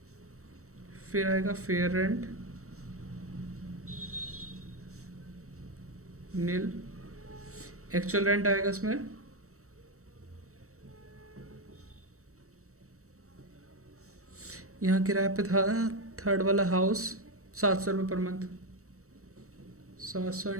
फिर आएगा फेयर रेंट नील। एक्चुअल रेंट आएगा इसमें यहाँ किराए पे था थर्ड वाला हाउस 700 रुपये पर मंथ। 700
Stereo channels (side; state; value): left; late; 0.65 ms